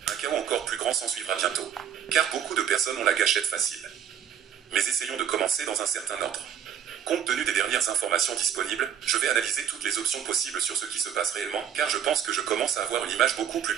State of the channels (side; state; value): left; quieter; 9.1 dB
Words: un chaos encore plus grand s'ensuivra bientôt. Car beaucoup de personnes ont la gâchette facile. Mais essayons de commencer dans un certain ordre. Compte tenu des dernières informations disponibles, je vais analyser toutes les options possibles sur ce qui se passe réellement, car je pense que je commence à avoir une image beaucoup plus